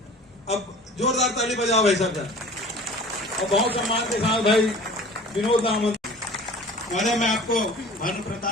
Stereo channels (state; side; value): normal; both; correlation 0.44